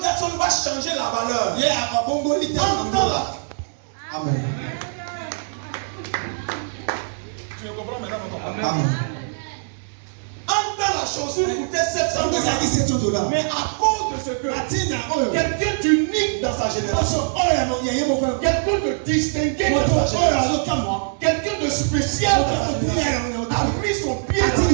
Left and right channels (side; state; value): left; silent; digital silence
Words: va changer la valeur. Amen. Tu me comprends maintenant? Amen. En temps, la chaussure coûtait $700. Mais à cause de ce que quelqu'un d'unique dans sa génération, quelqu'un de distingué dans sa génération, quelqu'un de spécial dans sa génération, a mis son pied